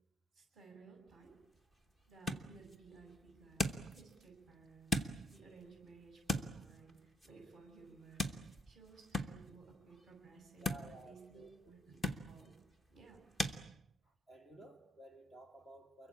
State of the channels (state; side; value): normal; both; correlation 0.70